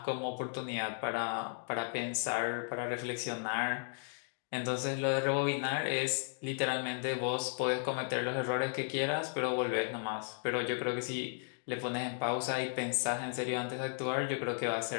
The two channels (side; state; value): right; silent; 54 dB below the other